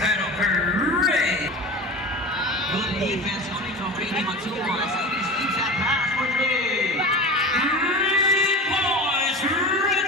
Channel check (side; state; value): both; normal; correlation 0.32